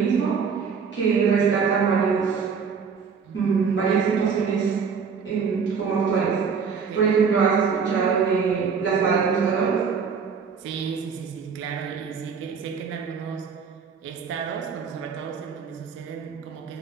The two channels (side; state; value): left; quieter; 6.0 dB